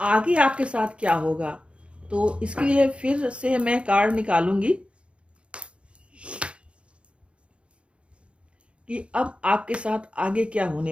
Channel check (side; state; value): left; late; 0.059 ms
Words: आपके साथ क्या होगा। तो इसके लिए फिर से मैं कार्ड निकालूंगी कि अब आपके साथ आगे क्या होने